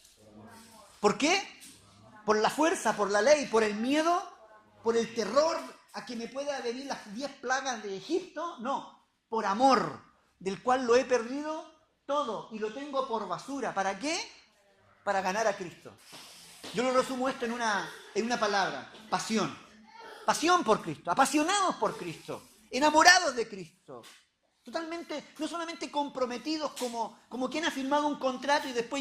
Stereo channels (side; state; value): both; identical; correlation 1.00